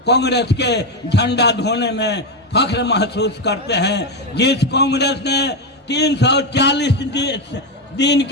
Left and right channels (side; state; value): both; normal; correlation 0.09